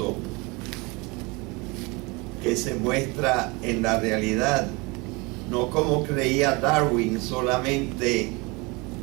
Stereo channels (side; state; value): left; quieter; 26.6 dB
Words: que se muestra en la realidad, no como creía Darwin, solamente